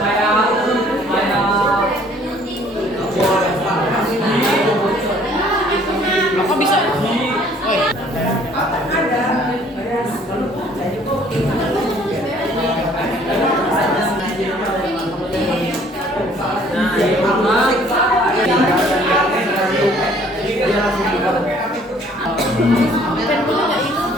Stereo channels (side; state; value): both; normal; correlation 0.58